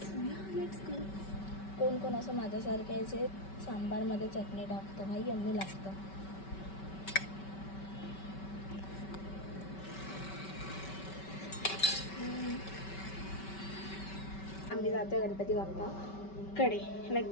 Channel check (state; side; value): late; right; 5.2 ms